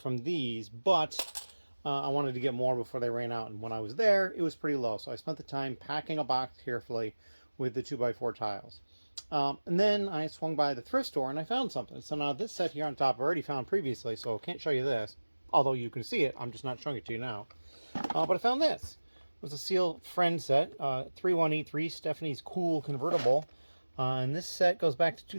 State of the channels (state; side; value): inverted; both; correlation -1.00